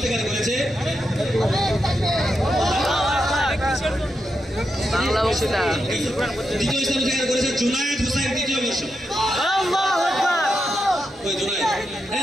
করেছে বাংলা বক্তৃতা দ্বিতীয় স্থান অধিকার করেছে জুনায়েদ হোসেন দ্বিতীয় বর্ষ আল্লাহু আকবার ওই জুনায়েদ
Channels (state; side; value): normal; both; correlation 0.85